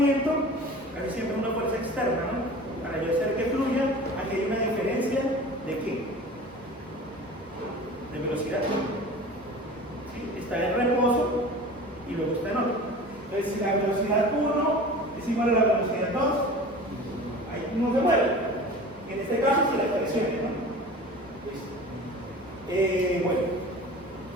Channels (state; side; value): normal; both; correlation 0.38